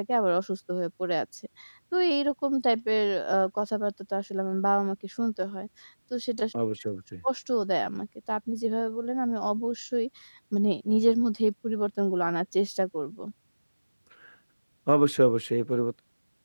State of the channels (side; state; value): both; inverted; correlation -1.00